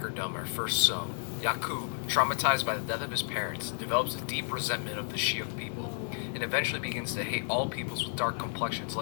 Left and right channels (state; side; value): silent; right; 57 dB below the other